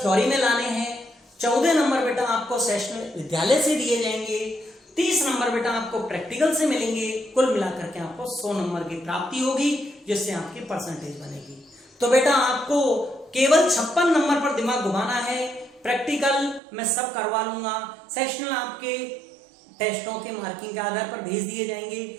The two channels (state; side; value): drops out; left; at 16.6 s